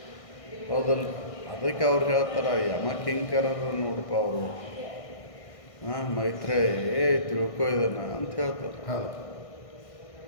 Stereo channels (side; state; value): right; late; 1.6 ms